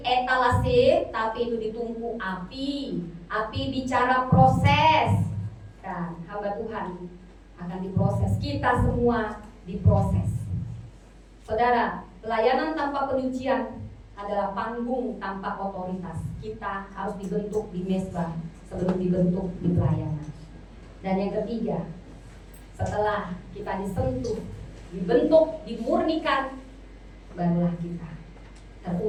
etalase, tapi itu ditunggu api. Api bicara proses. Kan, hamba Tuhan akan diproses. Kita semua diproses. Saudara, pelayanan tanpa penyucian adalah panggung tanpa otoritas. Kita harus dibentuk di mezbah sebelum dibentuk di pelayanan. Dan yang ketiga, setelah kita disentuh, dibentuk, dimurnikan, barulah kita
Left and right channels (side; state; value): both; identical; correlation 1.00